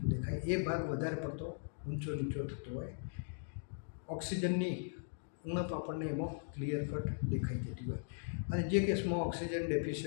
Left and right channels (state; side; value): silent; right; digital silence